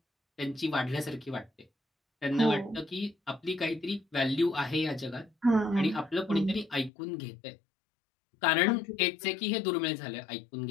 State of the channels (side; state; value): right; drops out; at 6.9 s